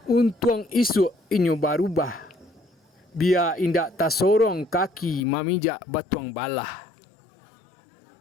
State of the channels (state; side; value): drops out; right; at 5.2 s